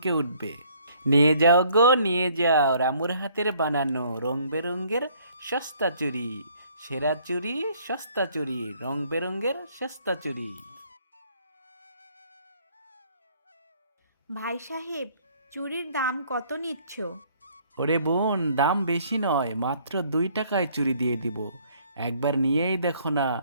উঠবে। নিয়ে যাও গো নিয়ে যাও রামুর হাতের বানানো রং বেরঙের সস্তা চুড়ি, সেরা চুড়ি সস্তা চুড়ি, রং বেরঙের সস্তা চুড়ি। ভাই সাহেব, চুড়ির দাম কত নিচ্ছ? ওরে বোন, দাম বেশি নয়, মাত্র 2 টাকায় চুড়ি দিয়ে দিব। একবার নিয়েই দেখো না,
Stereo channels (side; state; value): both; inverted; correlation -0.62